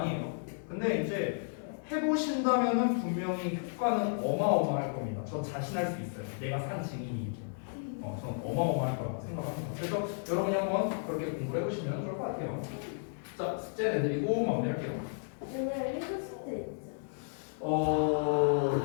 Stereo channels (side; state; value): right; silent; digital silence